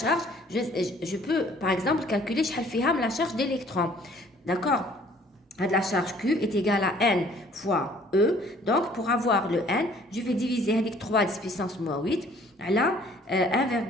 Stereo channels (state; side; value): normal; both; correlation 0.57